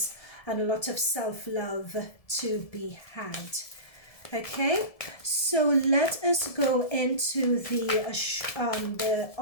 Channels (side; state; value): right; late; 1.7 ms